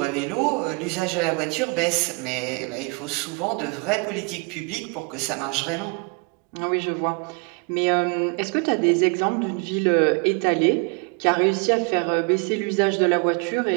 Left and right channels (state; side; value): quieter; left; 32.3 dB